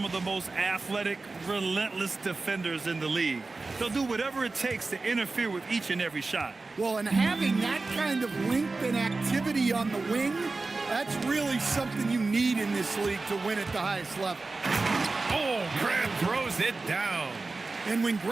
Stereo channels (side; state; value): left; quieter; 3.6 dB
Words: of the most athletic, relentless defenders in the league. They'll do whatever it takes to interfere with each and every shot. Well, and having that kind of length and activity on the wing, that's really something you need in this league to win at the highest level. Oh, Grant throws it down. And when